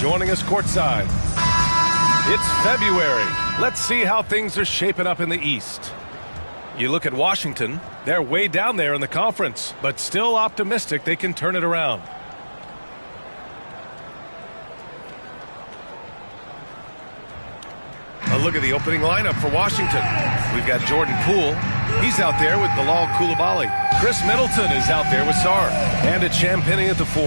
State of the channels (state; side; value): inverted; both; correlation -1.00